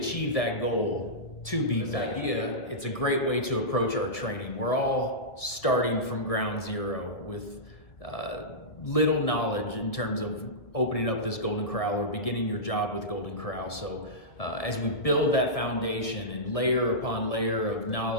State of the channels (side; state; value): right; late; 1.9 ms